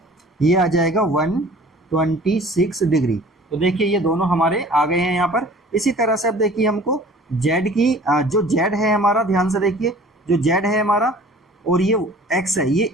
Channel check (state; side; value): normal; both; correlation 0.48